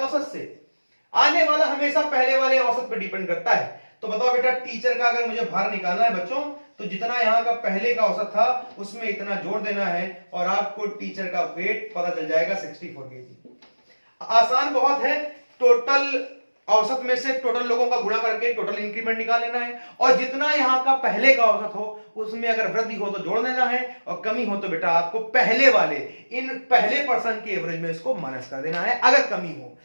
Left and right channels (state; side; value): inverted; both; correlation -1.00